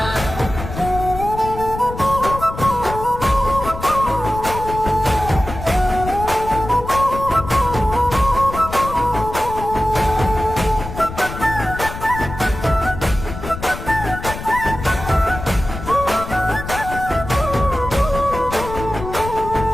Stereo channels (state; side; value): noise; left; rumble, 9 dB below the sound